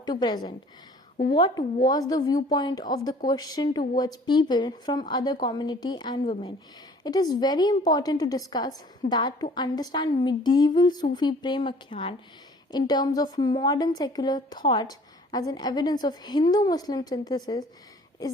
to present? What was the viewpoint of the question towards people from other community and women? It is very important to discuss that to understand medieval Sufi Prem Akhyan in terms of modern secular thought as an evidence of Hindu-Muslim synthesis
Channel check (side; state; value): both; normal; correlation 0.52